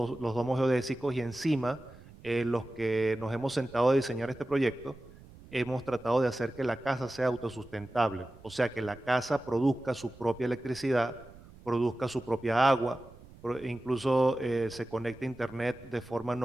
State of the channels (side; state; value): right; noise; rumble, 21 dB below the sound